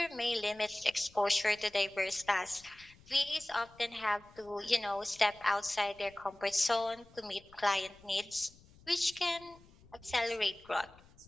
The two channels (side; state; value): left; noise; rumble, 25 dB below the sound